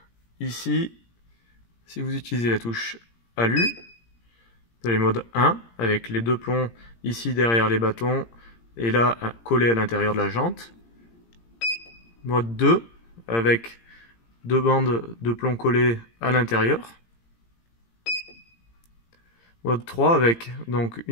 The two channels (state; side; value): late; right; 17 ms